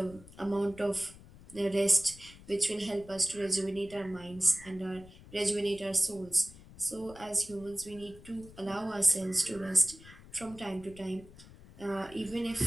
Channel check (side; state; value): left; noise; rumble, 20 dB below the sound